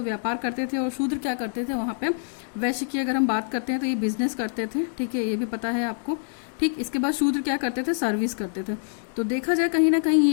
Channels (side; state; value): right; silent; digital silence